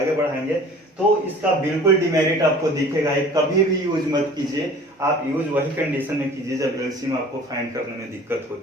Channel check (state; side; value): normal; both; correlation 0.46